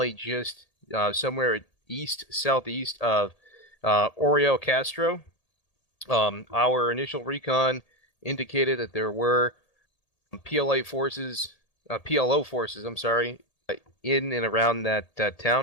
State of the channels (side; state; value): right; late; 1.8 ms